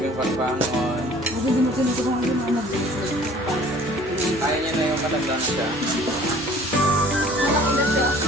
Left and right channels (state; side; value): normal; both; correlation 0.52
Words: Ako din mo tinutulungan yung mga Kaya niya na yung matandang siya. malaki na siya.